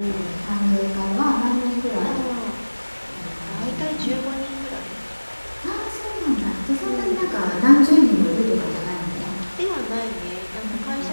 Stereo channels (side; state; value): both; inverted; correlation -1.00